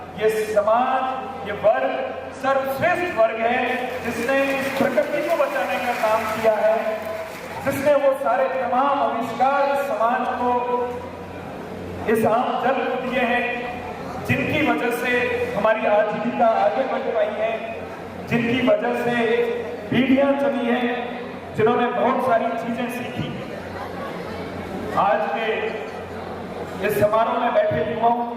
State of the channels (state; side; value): identical; both; correlation 1.00